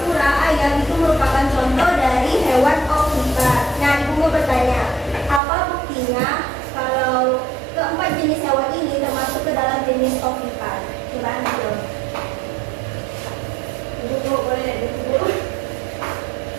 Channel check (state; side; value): drops out; left; at 5.4 s